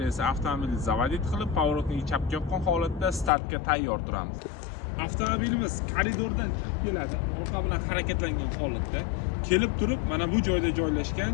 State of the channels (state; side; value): drops out; right; at 3.3 s